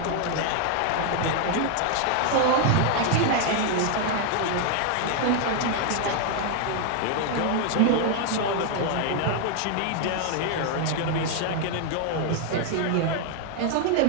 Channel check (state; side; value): different; both; correlation 0.00